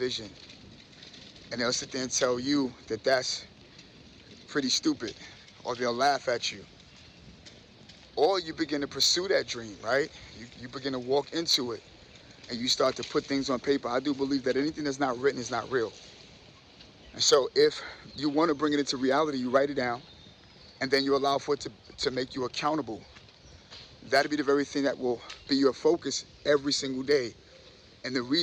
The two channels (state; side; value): identical; both; correlation 1.00